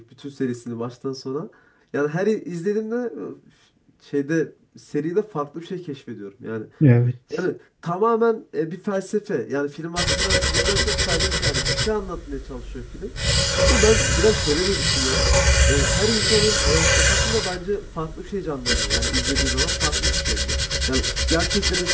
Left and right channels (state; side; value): identical; both; correlation 1.00